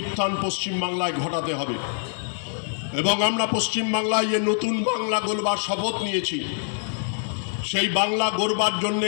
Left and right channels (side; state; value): right; silent; digital silence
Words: উত্থান পশ্চিমবাংলায় ঘটাতে হবে এবং আমরা পশ্চিমবাংলায় যে নতুন বাংলা গড়বার শপথ নিয়েছি, সেই বাংলা গড়বার